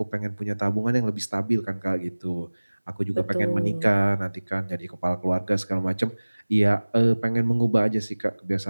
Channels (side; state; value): both; inverted; correlation -1.00